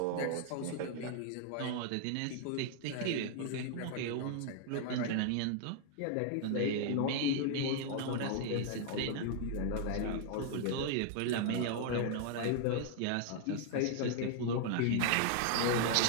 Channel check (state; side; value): different; both; correlation 0.00